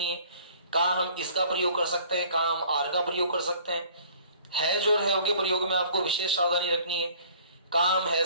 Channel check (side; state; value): both; inverted; correlation -0.54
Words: है। कहां हम इसका प्रयोग कर सकते हैं, कहां हम आर का प्रयोग कर सकते हैं। हैज और हैव के प्रयोग में आपको विशेष सावधानी रखनी है। कहां हम